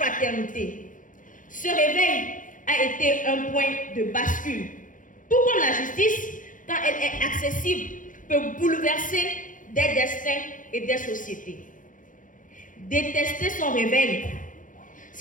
Ce réveil a été un point de bascule. Tout comme la justice, quand elle est accessible, peut bouleverser des destins et des sociétés. Détester son réveil,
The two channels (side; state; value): right; late; 0.38 ms